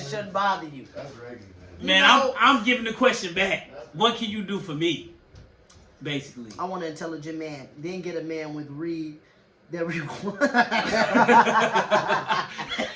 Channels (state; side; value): identical; both; correlation 1.00